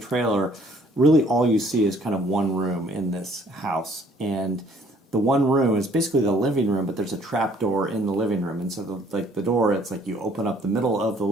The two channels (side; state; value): both; normal; correlation 0.61